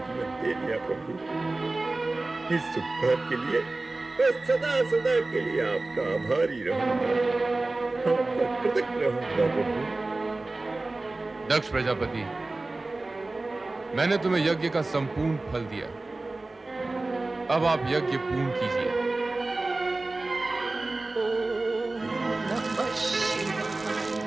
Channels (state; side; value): quieter; left; 3.1 dB